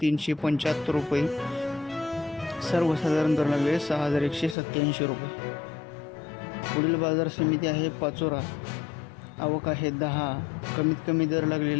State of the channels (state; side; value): drops out; right; at 4.5 s